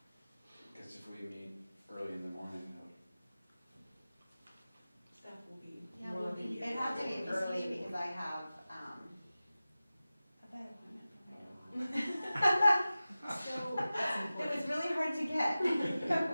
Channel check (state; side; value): inverted; both; correlation -0.96